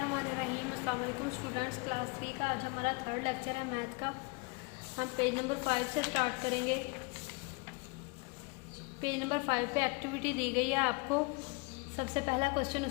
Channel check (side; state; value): right; quieter; 29.6 dB